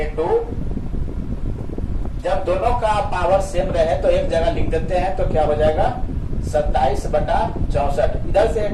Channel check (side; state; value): both; identical; correlation 1.00